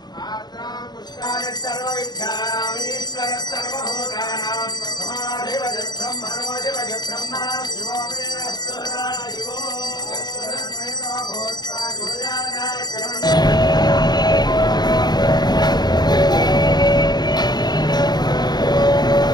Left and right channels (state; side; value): late; right; 0.20 ms